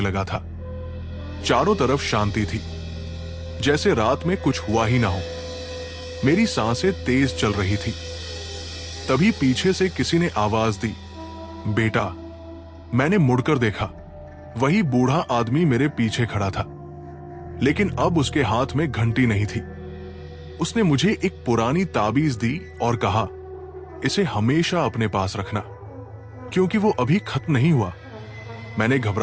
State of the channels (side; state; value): both; identical; correlation 1.00